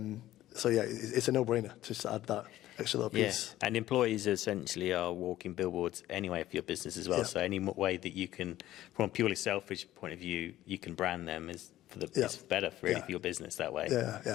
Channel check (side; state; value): right; quieter; 14.3 dB